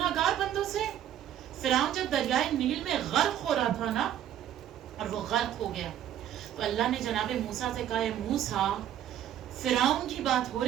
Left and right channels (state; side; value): quieter; left; 11.0 dB